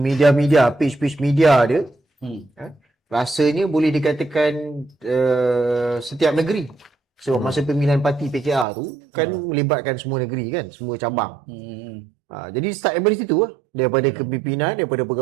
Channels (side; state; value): left; drops out; at 8.7 s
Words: page media dia. Rasanya boleh dikatakan setiap negeri. Sebab masa pemilihan parti PKR tu kan melibatkan semua negeri kan, semua cabang. Jadi start daripada situ lah. Daripada kepimpinan, daripada